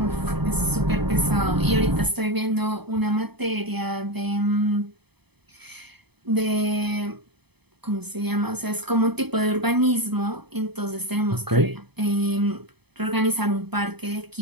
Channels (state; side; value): late; left; 0.98 ms